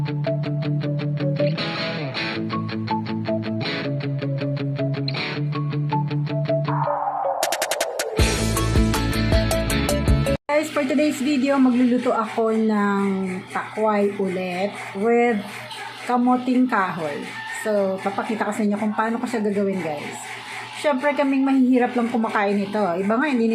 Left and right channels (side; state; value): both; identical; correlation 1.00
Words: Guys, for today's video, magluluto ako ng takway ulit with kamoting kahoy. So, papakita ko sa inyo kung paano ko siya gagawin, guys. Siyempre, kaming mahihirap lang kumakain ito. Iba nga, hindi